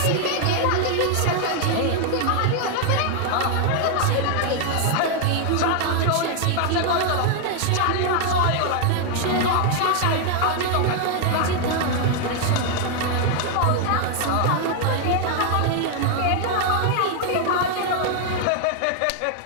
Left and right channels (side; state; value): both; different; correlation 0.00